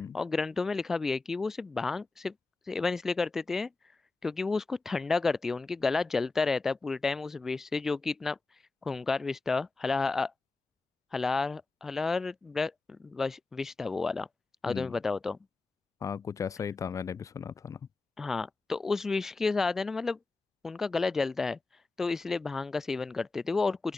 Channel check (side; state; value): right; quieter; 3.7 dB